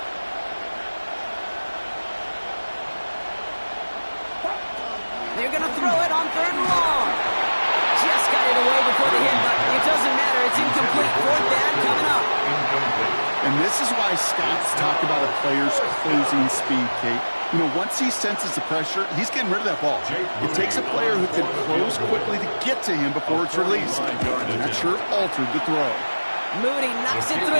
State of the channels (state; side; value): inverted; both; correlation -1.00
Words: They're going to throw it on 3rd and long. Just got it away before the hit, but it doesn't matter. It's incomplete. 4th down coming up. And this is why Scott's talked about a player's closing speed, Kate. You know, once he senses the pressure, he's getting rid of that ball. It takes a player who can close quickly to get to him before it's released. And that sure altered the throw. Moody knocks it